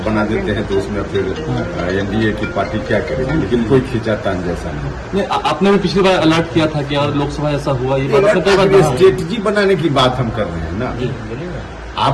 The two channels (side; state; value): both; identical; correlation 1.00